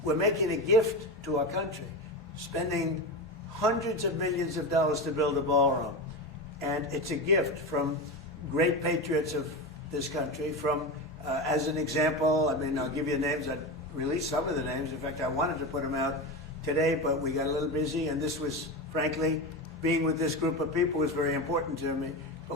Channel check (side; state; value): both; normal; correlation 0.20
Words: We're making a gift to our country, spending hundreds of millions of dollars to build a ballroom. And it's a gift from great patriots of this country. From, as an example, I mean, I'll give you names. I released some of the names. In fact, I wanted to put them out today, but we got a little busy. And this was, frankly, being with this group of people was very important to me.